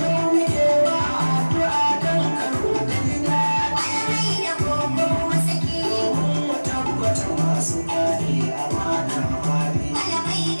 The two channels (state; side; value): inverted; both; correlation -1.00